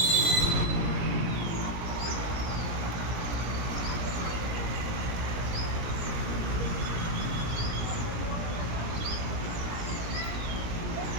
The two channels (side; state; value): left; late; 17 ms